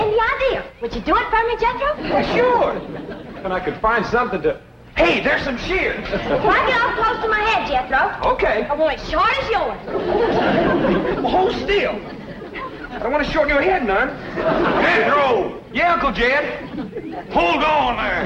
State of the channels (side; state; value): both; identical; correlation 1.00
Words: idea. Would you do it for me, Jethro? Well, sure. And I could find something to... Hey, there's some shears. Why get off close to my head, Jethro? Okay. I want it short as yours. Well, hold still. I don't want to shorten your head none. Jethro! Yeah, Uncle Jed. Hold on